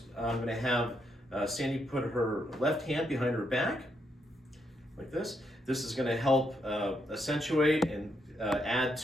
I'm going to have Sandy put her left hand behind her back, like this. This is going to help accentuate and add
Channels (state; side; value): normal; both; correlation 0.78